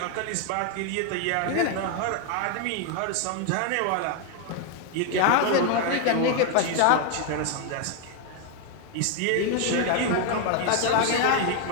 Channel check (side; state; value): both; different; correlation 0.01